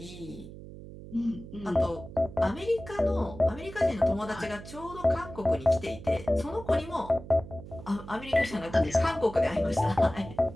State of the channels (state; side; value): noise; right; hum, 14 dB below the sound